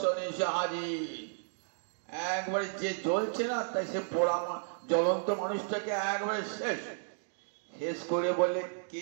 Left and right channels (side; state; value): left; silent; digital silence